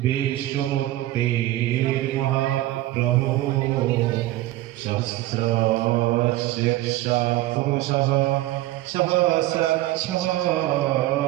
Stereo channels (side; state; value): left; quieter; 16.3 dB